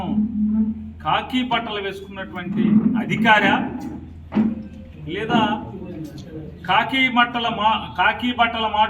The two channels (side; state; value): both; identical; correlation 1.00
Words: కాకి బట్టలు వేసుకున్నటువంటి అధికారా లేదా కాకి బట్టల